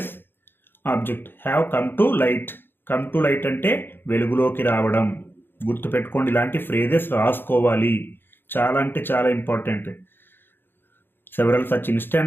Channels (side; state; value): right; late; 0.10 ms